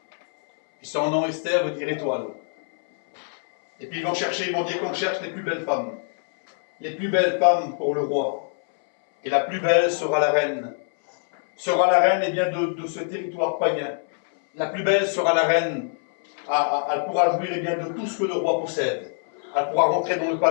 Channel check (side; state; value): right; silent; 63 dB below the other